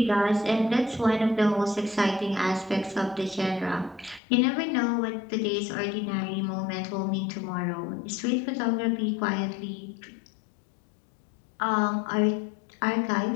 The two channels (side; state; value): right; drops out; at 4.2 s